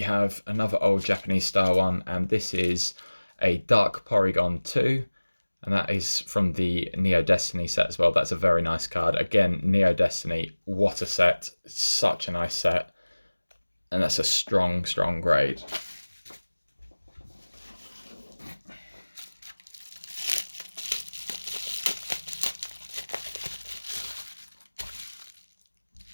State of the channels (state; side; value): inverted; both; correlation -1.00